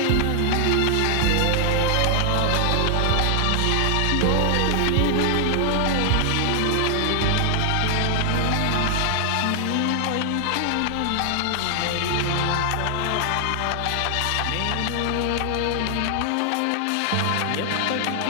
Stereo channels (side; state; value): both; different; correlation 0.00